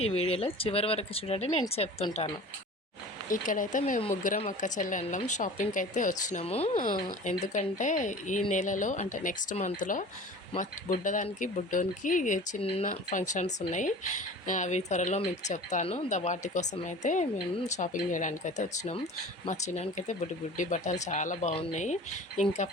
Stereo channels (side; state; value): both; normal; correlation 0.40